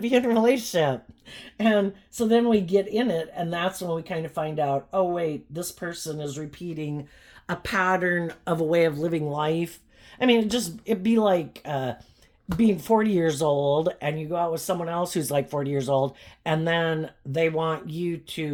in a relationship. And so then we get in it, and that's when we kind of find out, oh, wait, this person is repeating a pattern of a way of living life. I mean, it'd be like being 40 years old, and you go out with someone else who's 40 years old, and then they want you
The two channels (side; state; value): both; identical; correlation 1.00